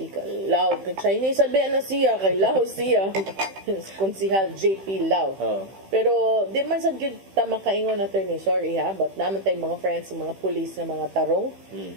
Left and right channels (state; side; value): late; left; 15 ms